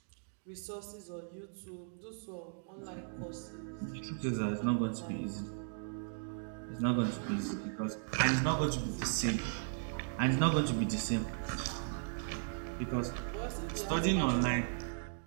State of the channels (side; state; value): left; silent; digital silence